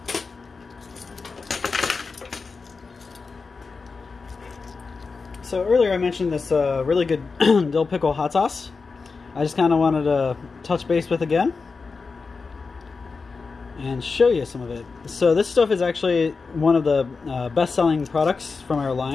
So earlier I mentioned this really good Dill Pickle Hot Sauce. I just kind of wanted to touch base with again and show you some of it. So this stuff is actually one of the best-selling products from our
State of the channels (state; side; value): quieter; right; 4.5 dB